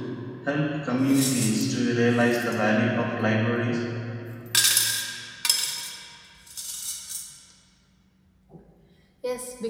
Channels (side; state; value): both; identical; correlation 1.00